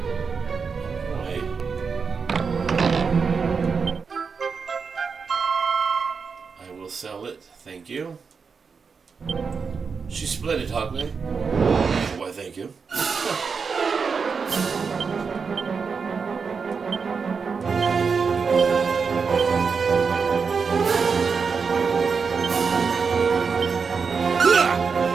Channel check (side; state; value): left; quieter; 5.4 dB